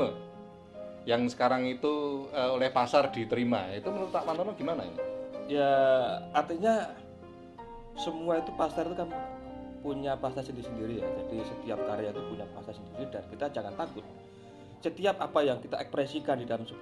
yang sekarang itu oleh pasar diterima? Itu menurut Pak Pantono gimana ini? Ya, artinya semua itu pasar itu kan punya pasar sendiri-sendiri ya. Jadi setiap karya itu punya pasar sendiri dan kita jangan takut. Setiap apa yang kita ekspresikan di dalam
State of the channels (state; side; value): identical; both; correlation 1.00